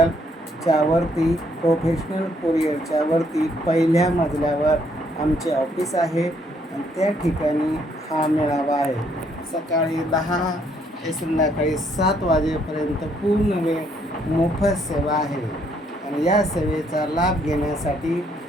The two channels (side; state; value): both; normal; correlation 0.69